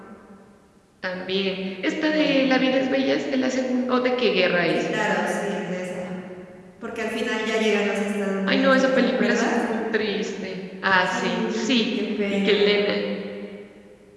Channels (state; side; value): identical; both; correlation 1.00